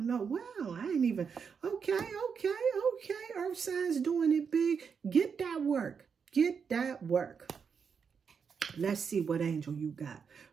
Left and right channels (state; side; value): quieter; left; 6.3 dB